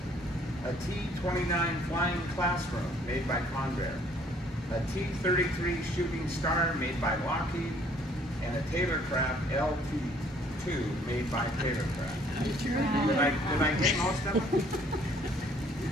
A T-29 Flying Classroom, made by Convair. A T-33 Shooting Star, made by Lockheed. And a Taylorcraft LT-2, made by Taylorcraft. Did I get most of them?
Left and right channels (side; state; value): both; normal; correlation 0.60